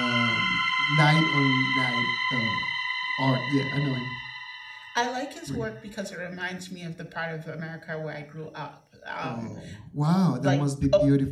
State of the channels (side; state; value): both; identical; correlation 1.00